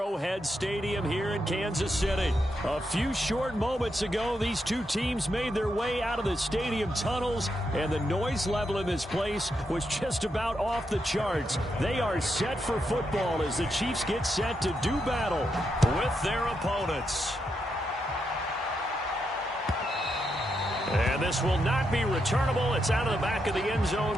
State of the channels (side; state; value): both; normal; correlation 0.83